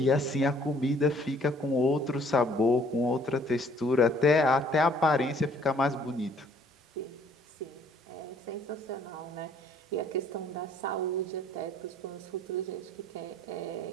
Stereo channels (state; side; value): normal; both; correlation 0.60